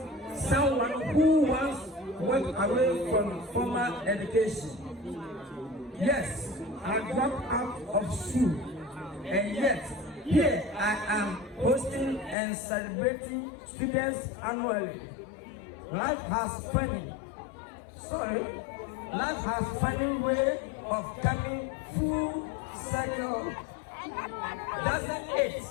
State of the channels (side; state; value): right; drops out; at 12.4 s